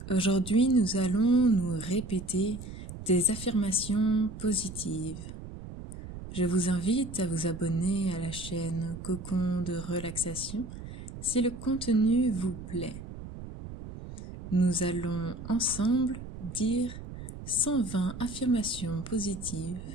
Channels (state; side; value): noise; right; rumble, 11 dB below the sound